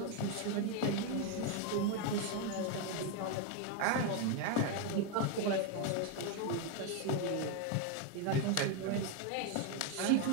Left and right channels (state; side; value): different; both; correlation 0.02